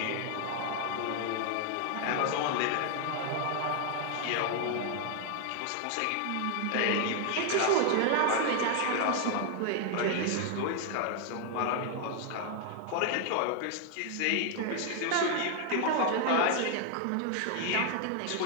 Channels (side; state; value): both; different; correlation 0.00